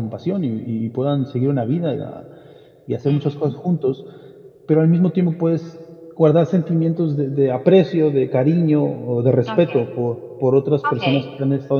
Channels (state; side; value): identical; both; correlation 1.00